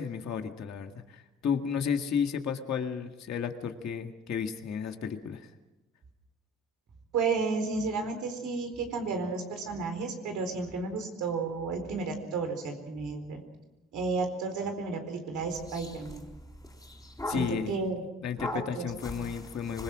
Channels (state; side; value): normal; both; correlation 0.42